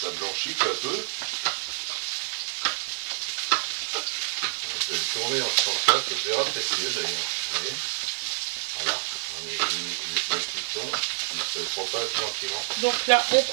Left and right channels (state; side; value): silent; left; digital silence